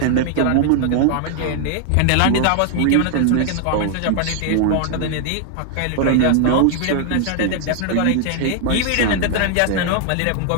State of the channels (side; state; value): both; different; correlation 0.00